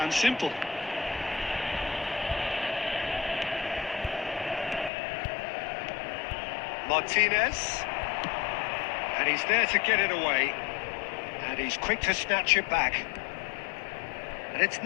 simple. Martinez, and he's there to get it away, and he's quick to snatch it back, and it's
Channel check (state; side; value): drops out; right; at 4.9 s